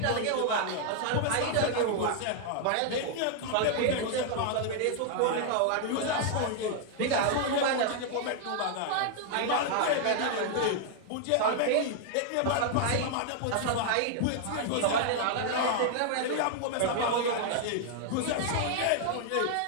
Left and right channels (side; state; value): both; different; correlation 0.00